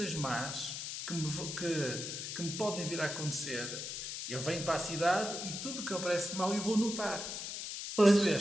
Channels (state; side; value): noise; left; hiss, 6 dB below the sound